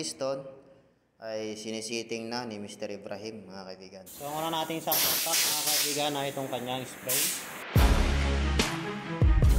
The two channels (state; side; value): identical; both; correlation 1.00